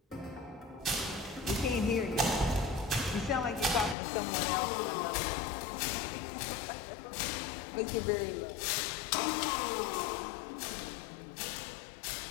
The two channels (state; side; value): drops out; right; at 4.0 s